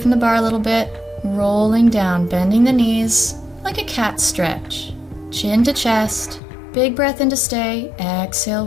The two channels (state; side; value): drops out; right; at 6.4 s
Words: the bar a little bit, rolling down, bending the knees, like a cat stretch. Chin to chest, big breath in to stay, exhale,